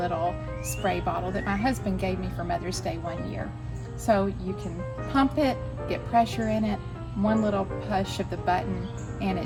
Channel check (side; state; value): both; identical; correlation 1.00